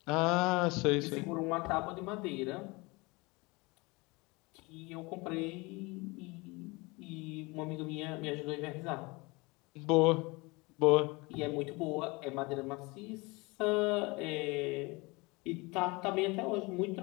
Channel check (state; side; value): quieter; right; 25.5 dB